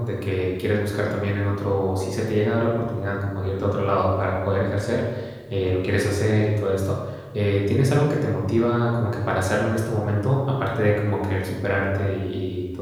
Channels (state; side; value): identical; both; correlation 1.00